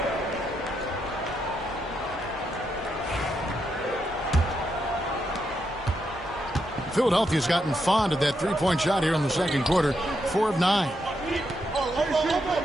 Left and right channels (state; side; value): normal; both; correlation 0.81